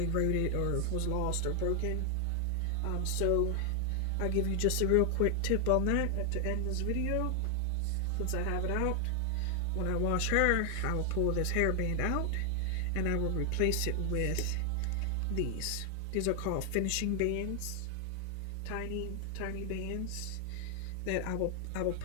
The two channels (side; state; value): both; different; correlation 0.00